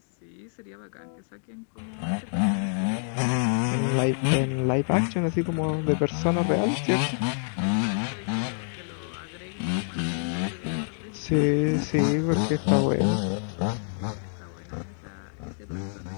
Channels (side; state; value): right; silent; digital silence